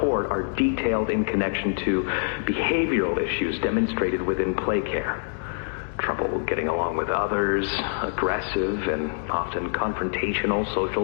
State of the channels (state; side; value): silent; right; 62 dB below the other